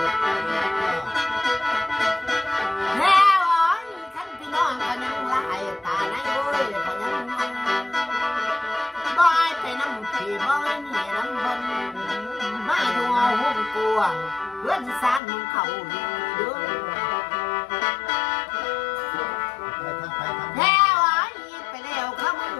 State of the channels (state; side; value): drops out; right; at 15.2 s